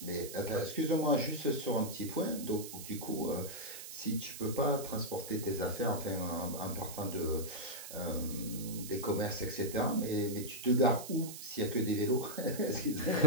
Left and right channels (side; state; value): right; noise; hiss, 11 dB below the sound